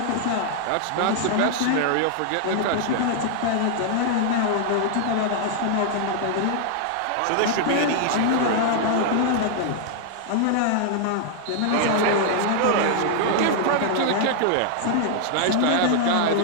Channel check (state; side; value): different; both; correlation 0.00